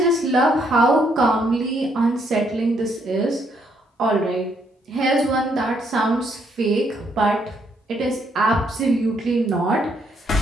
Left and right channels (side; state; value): both; normal; correlation 0.72